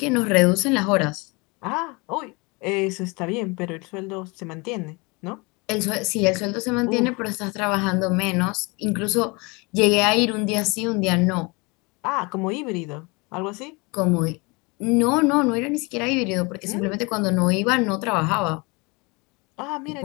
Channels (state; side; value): quieter; right; 27.6 dB